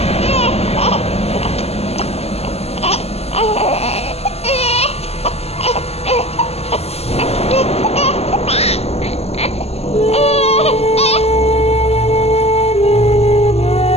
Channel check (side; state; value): right; late; 0.30 ms